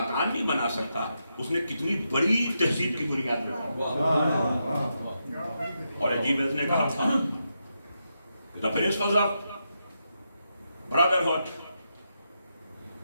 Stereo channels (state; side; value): inverted; both; correlation -0.84